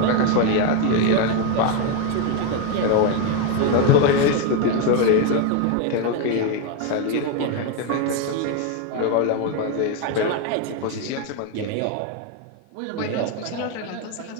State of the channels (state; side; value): different; both; correlation 0.02